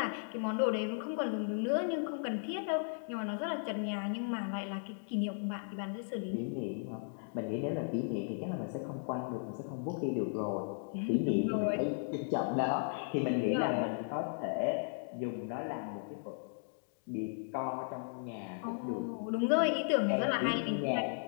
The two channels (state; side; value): silent; right; digital silence